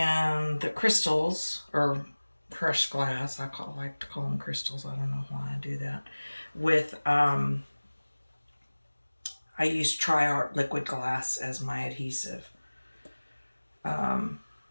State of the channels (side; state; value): both; inverted; correlation -1.00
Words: the crystals, or crushed glass, like to call them crystals, I don't know why I do that, with, I use Tri-Art liquid glass as my adhesive.